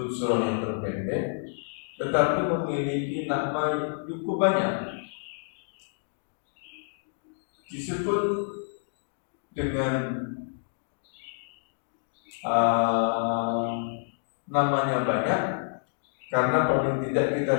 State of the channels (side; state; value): right; silent; digital silence